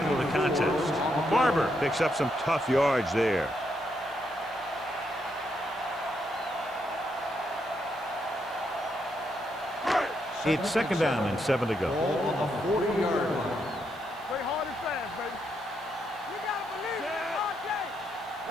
of the contest. Barber picks up some tough yards there. It's 2nd down and 7 to go. Ball on the 40-yard line. Play hard and fast, baby. You gotta believe it all day.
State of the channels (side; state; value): right; noise; hiss, 27 dB below the sound